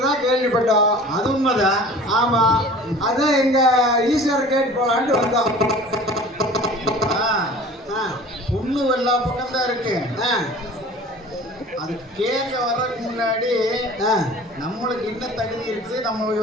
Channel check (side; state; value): both; normal; correlation 0.43